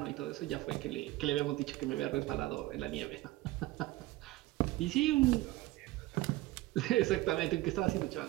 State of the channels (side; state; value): left; quieter; 18.1 dB